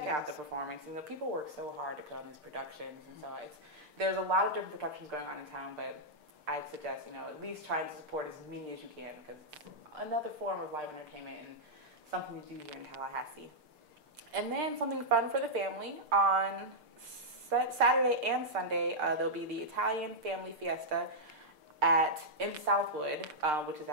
out the performance. People work so hard to put on these productions, and so there's a lot of different productions going on in town, but I'd suggest, at least trying to support as many as you can because it's another form of live entertainment and something to do here in Tallahassee. And then something fun for the family. On Saturday and Sunday, there'll be the Italian Family Fiesta in Southwood, which is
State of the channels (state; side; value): late; left; 6.6 ms